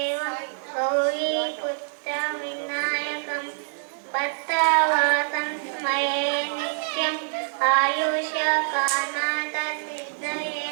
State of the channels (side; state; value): left; silent; 61 dB below the other